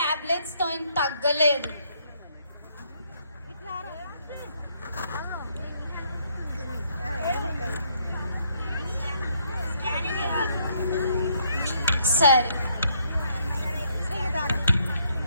తో తగ్గలేదు. సరే.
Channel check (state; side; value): inverted; both; correlation -0.71